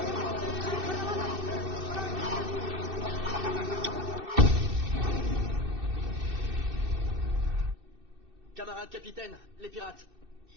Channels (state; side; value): late; left; 2.6 ms